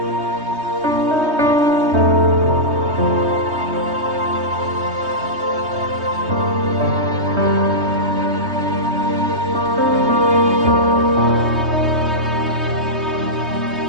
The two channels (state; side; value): late; left; 3.2 ms